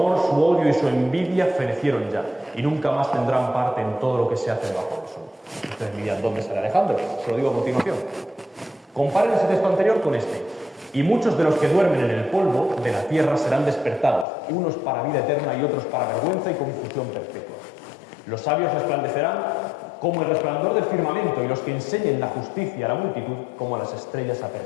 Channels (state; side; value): drops out; right; at 14.2 s